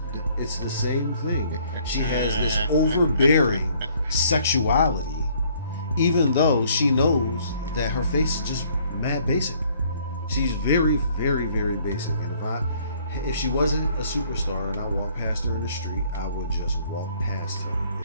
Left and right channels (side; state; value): both; inverted; correlation -0.61